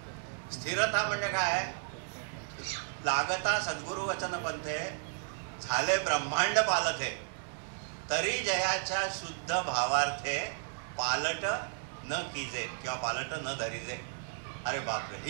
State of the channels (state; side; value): silent; left; 55 dB below the other